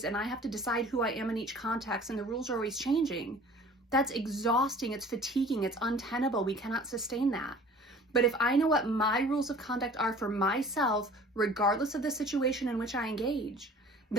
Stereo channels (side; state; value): both; normal; correlation 0.47